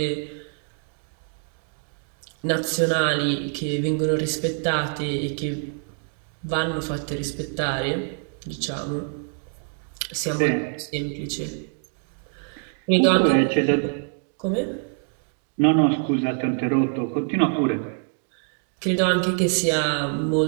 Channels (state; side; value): silent; left; 59 dB below the other